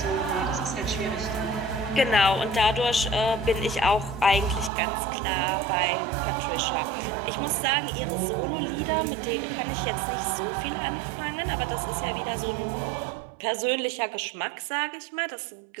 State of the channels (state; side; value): drops out; left; at 4.7 s